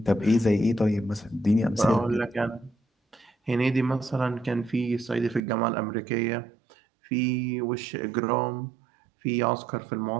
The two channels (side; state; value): left; drops out; at 5.4 s